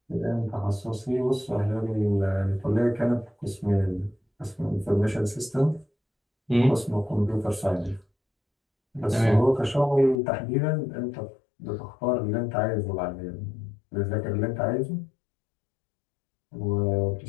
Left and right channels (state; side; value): drops out; right; at 10.2 s